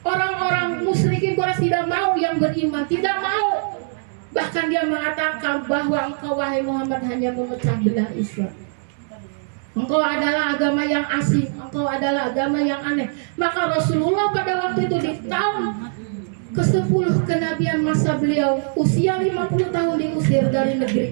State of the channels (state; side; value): silent; left; digital silence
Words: orang-orang musyrikin Quraisy tidak mau yang beriman, tidak mau. Bahkan dia mengatakan bahwa engkau wahai Muhammad hanya memecah belah Islam. Engkau adalah agama yang asing, engkau adalah agama yang aneh. Maka Rasulullah pada waktu itu di tahun ke-10 kenabian masa beliau, usia 50 tahun diusir dari